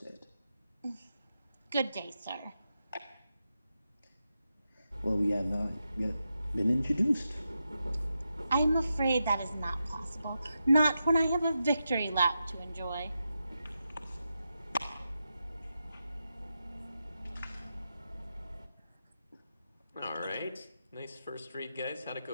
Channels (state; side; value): inverted; both; correlation -0.88